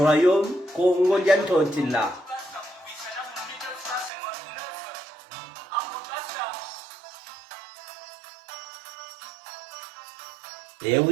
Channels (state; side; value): drops out; left; at 4.1 s